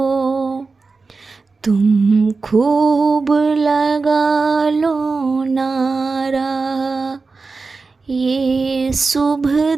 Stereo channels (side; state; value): left; quieter; 4.2 dB